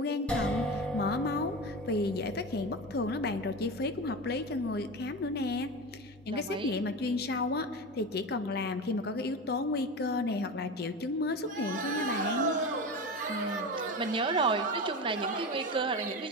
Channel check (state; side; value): normal; both; correlation 0.25